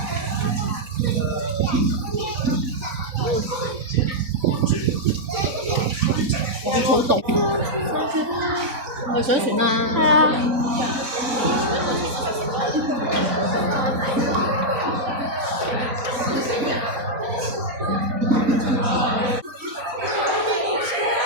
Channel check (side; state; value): left; late; 3.9 ms